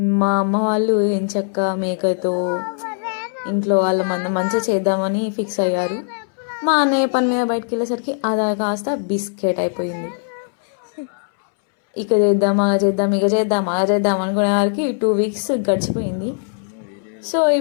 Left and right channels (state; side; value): silent; right; 66 dB below the other